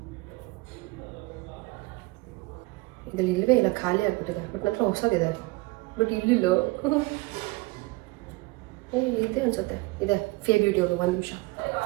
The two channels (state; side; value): quieter; left; 24.0 dB